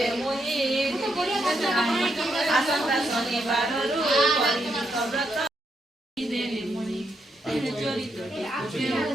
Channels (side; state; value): both; normal; correlation 0.80